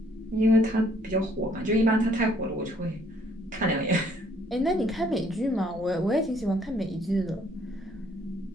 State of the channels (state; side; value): normal; both; correlation 0.64